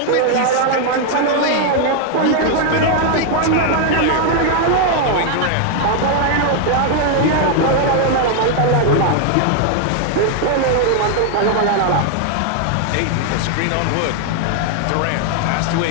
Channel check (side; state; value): both; different; correlation 0.00